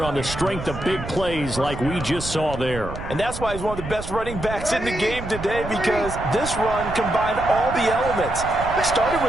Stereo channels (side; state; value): right; noise; rumble, 9 dB below the sound